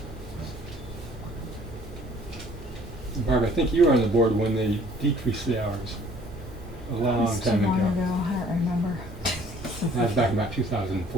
Barb, I think you were on the board when they decreased the hours a long time ago. I don't remember. That was back about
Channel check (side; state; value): both; normal; correlation 0.56